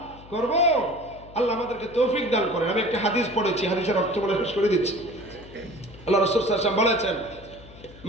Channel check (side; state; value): left; noise; hum, 20 dB below the sound